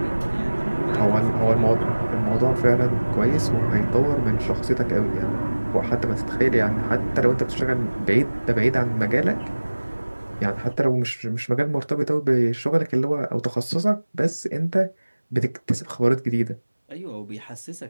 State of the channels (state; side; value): inverted; both; correlation -1.00